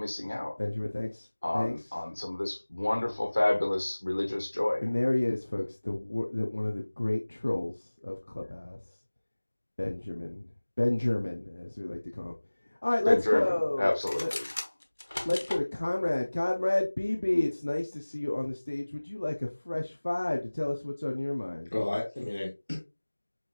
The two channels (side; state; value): both; inverted; correlation -1.00